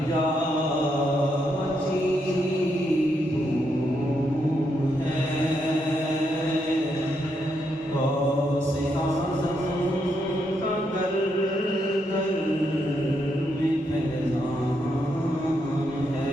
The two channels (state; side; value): normal; both; correlation 0.79